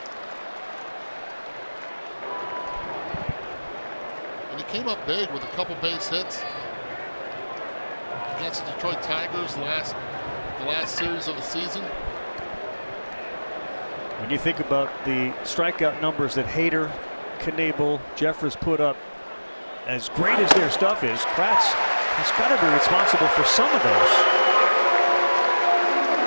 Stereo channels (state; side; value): inverted; both; correlation -1.00